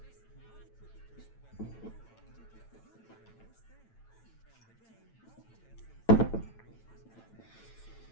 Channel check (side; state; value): right; late; 9.0 ms